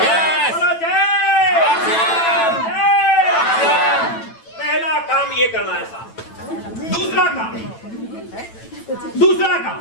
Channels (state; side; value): late; right; 9.0 ms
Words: बोलो जय। पहला काम ये करना है साहब। दूसरा काम